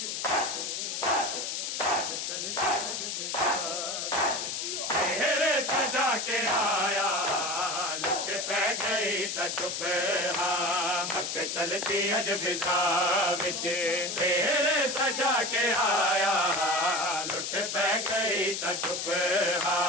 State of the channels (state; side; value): noise; left; hiss, 3 dB below the sound